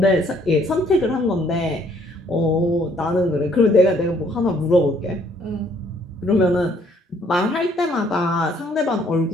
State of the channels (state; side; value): normal; both; correlation 0.64